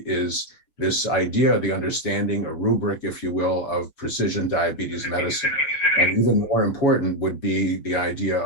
is this idea, the understanding, a rubric, if you will, of precision diabetes medicine. And even more important would be the idea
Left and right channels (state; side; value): late; right; 6.6 ms